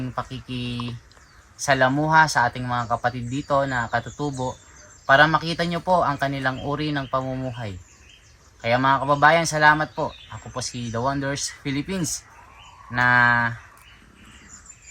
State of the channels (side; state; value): both; identical; correlation 1.00